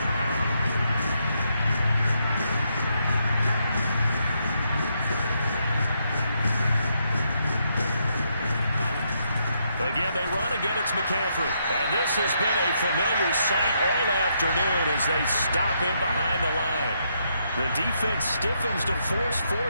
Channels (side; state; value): both; inverted; correlation -0.77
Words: Again, they run. Again, it's McCaffrey. And this has been a familiar sight all afternoon as they stop him behind the line. The defense stiffens to force